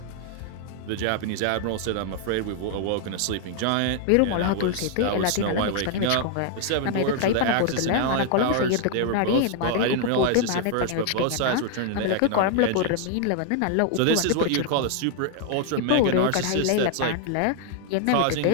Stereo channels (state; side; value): different; both; correlation 0.00